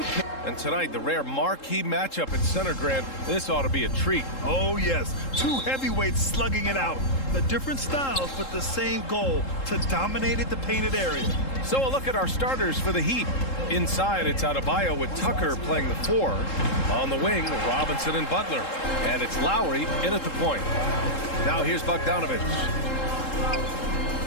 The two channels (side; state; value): right; late; 3.7 ms